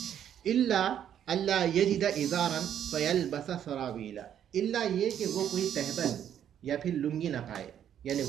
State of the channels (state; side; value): quieter; left; 9.8 dB